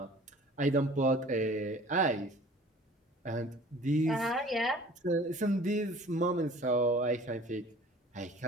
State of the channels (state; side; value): normal; both; correlation 0.48